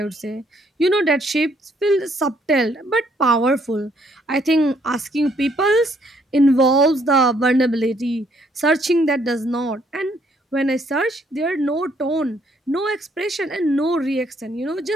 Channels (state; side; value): normal; both; correlation 0.68